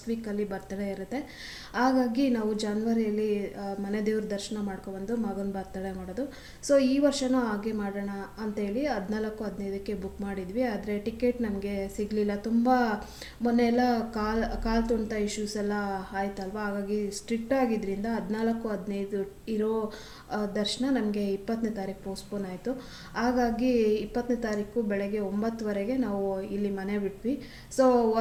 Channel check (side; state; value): both; identical; correlation 1.00